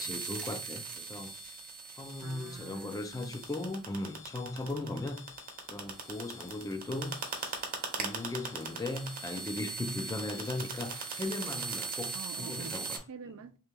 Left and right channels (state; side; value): normal; both; correlation 0.53